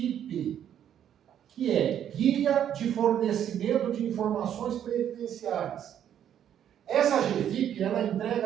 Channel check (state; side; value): quieter; left; 9.9 dB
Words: que é Guia de Fornecimento de Informações Previdenciárias. Essa GFIP, ela